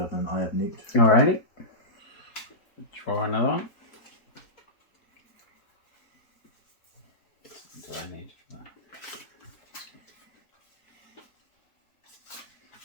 and Eye of Newt. Alrighty. Draw another one. What do I need for that?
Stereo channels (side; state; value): right; late; 4.3 ms